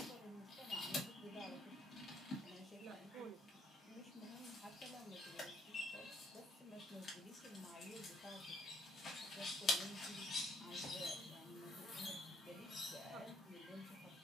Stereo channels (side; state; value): both; normal; correlation 0.68